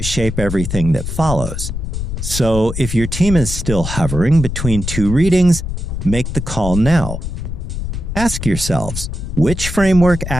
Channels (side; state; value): left; noise; rumble, 5 dB below the sound